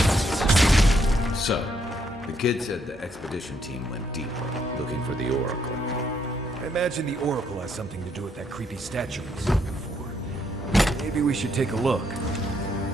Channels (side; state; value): both; normal; correlation 0.73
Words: So, the kid said the expedition team went deeper, looking for the Oracle. I imagine the Oracle has something to do with that creepy statue we saw before. Maybe we should take a look.